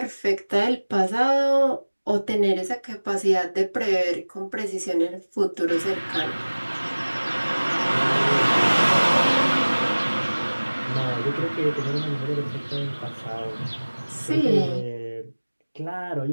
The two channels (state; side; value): inverted; both; correlation -1.00